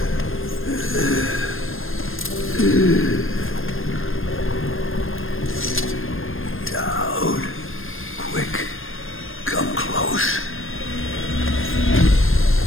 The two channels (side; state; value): right; late; 0.59 ms